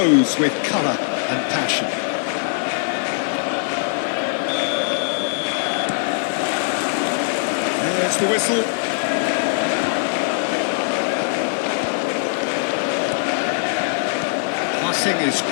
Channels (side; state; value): right; silent; digital silence